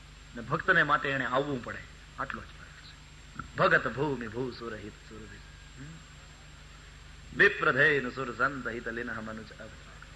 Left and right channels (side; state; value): both; identical; correlation 1.00